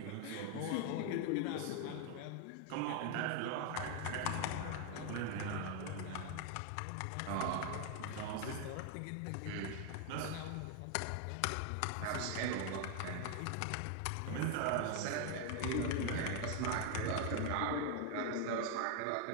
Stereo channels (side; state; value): both; different; correlation 0.00